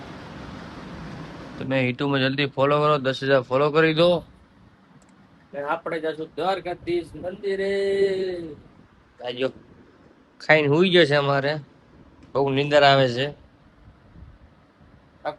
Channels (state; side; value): identical; both; correlation 1.00